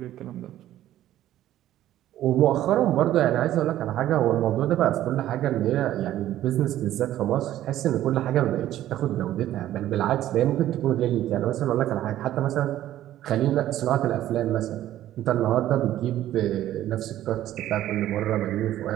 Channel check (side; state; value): left; quieter; 13.1 dB